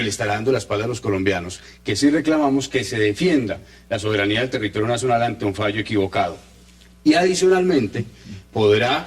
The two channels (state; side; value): identical; both; correlation 1.00